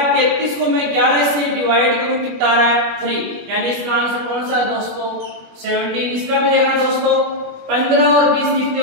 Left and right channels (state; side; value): late; left; 21 ms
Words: 33 को मैं 11 से डिवाइड करूं, कितना आ रहा है, 3। यानी इसका आंसर कौन सा है दोस्तों, 17। इसका भी देखना दोस्तों, 15 और 20 कितने